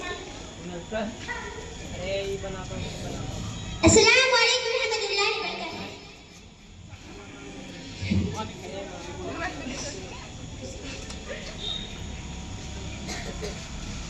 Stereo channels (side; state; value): both; identical; correlation 1.00